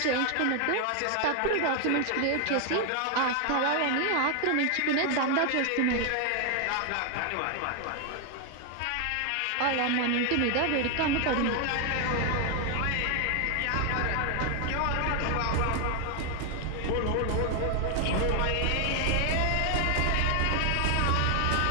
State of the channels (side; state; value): both; different; correlation 0.00